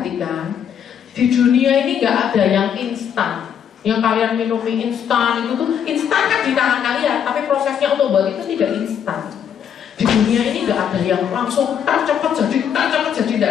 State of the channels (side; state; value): right; quieter; 8.5 dB